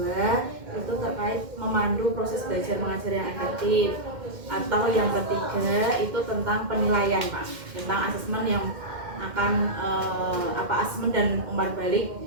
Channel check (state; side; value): late; left; 2.1 ms